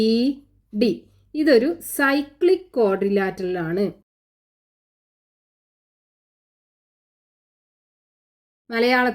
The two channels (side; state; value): both; identical; correlation 1.00